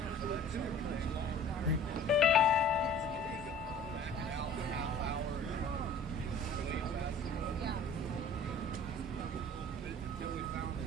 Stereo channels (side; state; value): both; normal; correlation 0.47